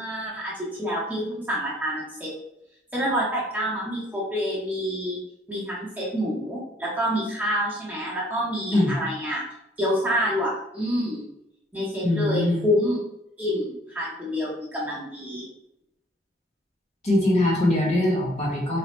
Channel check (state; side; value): normal; both; correlation 0.59